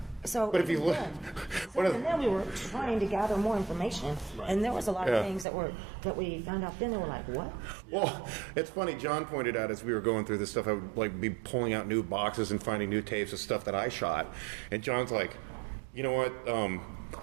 So, But if you look... and then we were trying to gather more information, and there was a lot of things that we found out then. They were like, what? Well, it's funny. John pointed out as we were going through this stuff, I would be pulling out new boxes and finding new tapes of stuff that I shot. And John's like, you know what?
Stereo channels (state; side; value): drops out; left; at 5.5 s